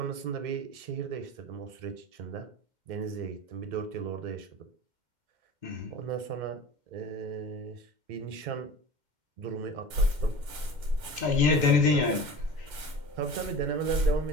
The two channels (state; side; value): late; left; 2.1 ms